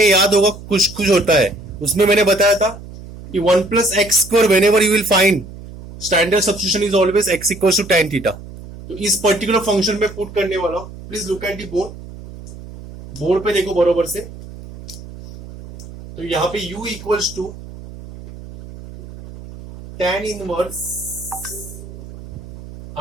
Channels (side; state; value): right; noise; hum, 15 dB below the sound